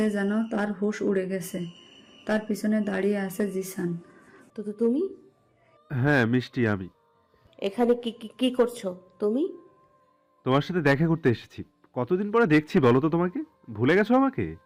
যেন তার হুঁশ উড়ে গেছে। তার পিছনে দাঁড়িয়ে আছে জিসান। তো তুমি হ্যাঁ মিষ্টি, আমি এখানে কি কি কি করছো তুমি? তোমার সাথে দেখা করতে এসেছি। কতদিন পরে দেখছি বলো তো তোমাকে? ভুলে গেছো আমাকে?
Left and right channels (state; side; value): identical; both; correlation 1.00